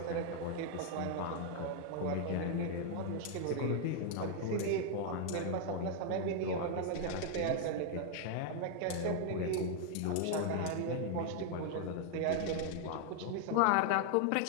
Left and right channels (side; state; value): both; different; correlation 0.00